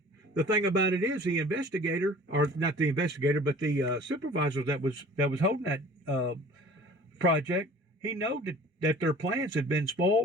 The thing about it is the investigator, or not the investigator, but the supervisor that was holding that project, he knew that their plans had been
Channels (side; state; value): both; normal; correlation 0.46